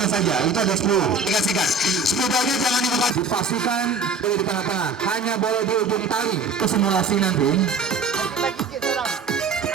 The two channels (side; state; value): left; quieter; 4.3 dB